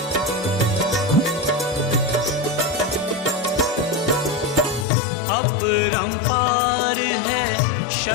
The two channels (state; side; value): drops out; right; at 4.9 s